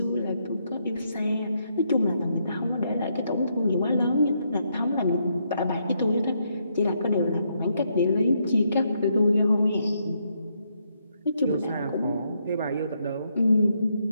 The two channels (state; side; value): inverted; both; correlation -0.77